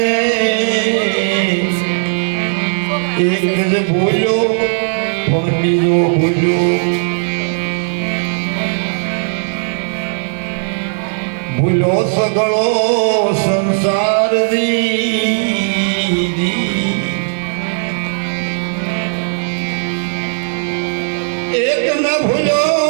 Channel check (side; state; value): left; silent; 69 dB below the other